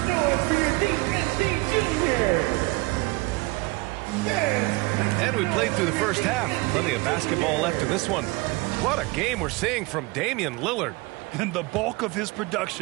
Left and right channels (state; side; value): quieter; left; 24.1 dB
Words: noise for your DSD Junior. And we played through the first half. Plenty of basketball left in this one. What a game we're seeing from Damian Lillard. And the bulk of his